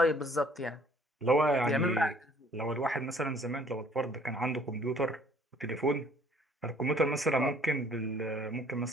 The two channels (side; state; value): both; normal; correlation 0.58